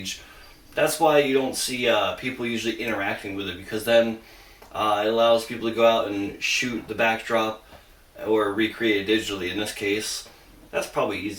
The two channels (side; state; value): both; identical; correlation 1.00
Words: That's why you don't see people usually interacting with it, because then it allows people to go out and shoot the backdrop or recreate it digitally. In this case, that's probably